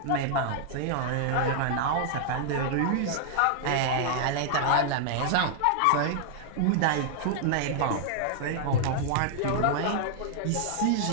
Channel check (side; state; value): both; different; correlation -0.01